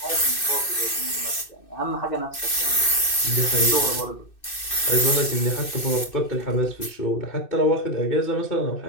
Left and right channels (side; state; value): right; late; 2.6 ms